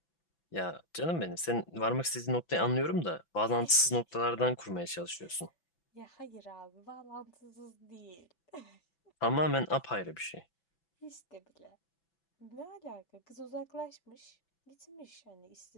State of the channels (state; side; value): late; right; 6.0 ms